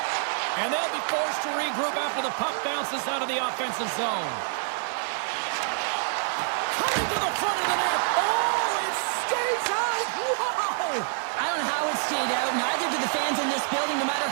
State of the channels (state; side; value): silent; left; digital silence